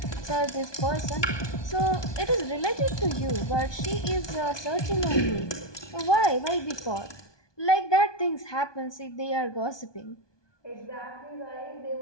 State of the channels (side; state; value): right; late; 1.2 ms